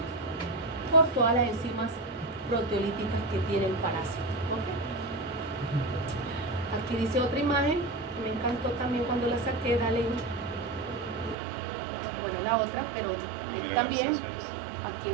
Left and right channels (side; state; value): left; drops out; at 11.4 s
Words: por todas las enzimas proteolíticas que tiene el parásito. ¿Okay? Aquí dice otra imagen, me encantó también cuando la saqué, dale. Bueno, la otra, pero ahí también, aquí